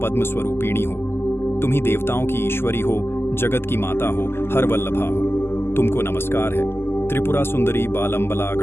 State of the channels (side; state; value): right; late; 0.12 ms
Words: स्वरूपिणी हो। तुम ही देवताओं की ईश्वरी हो, जगत की माता हो, हरवल्लभा हो। तुमको नमस्कार है। त्रिपुरा सुंदरी बालंबला